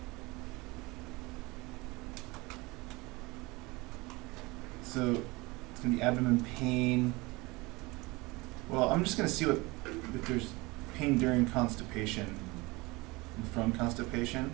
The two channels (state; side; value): quieter; left; 23.6 dB